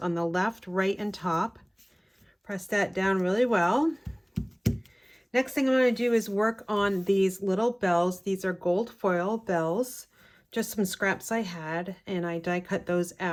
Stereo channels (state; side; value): identical; both; correlation 1.00